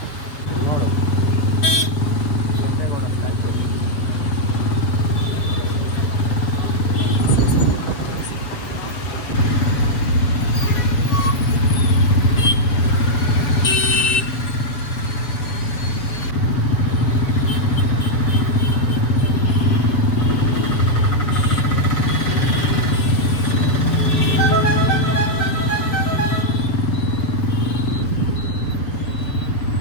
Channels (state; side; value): late; right; 7.1 ms